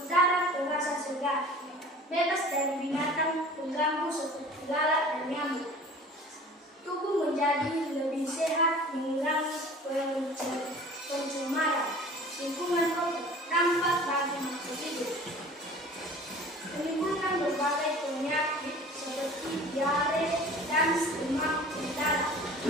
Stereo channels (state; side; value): normal; both; correlation 0.44